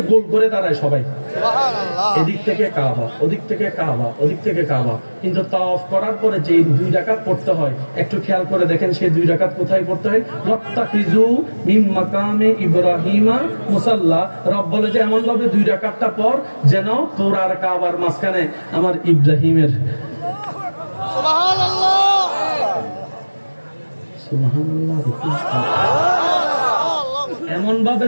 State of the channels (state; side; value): inverted; both; correlation -1.00